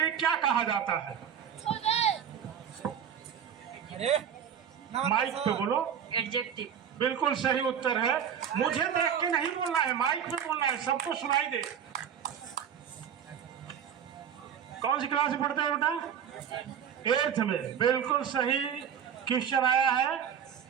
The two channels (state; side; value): quieter; left; 8.5 dB